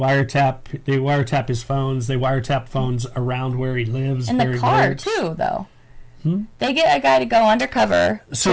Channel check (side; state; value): both; identical; correlation 1.00